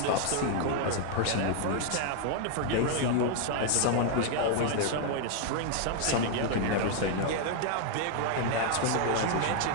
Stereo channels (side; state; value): both; different; correlation 0.00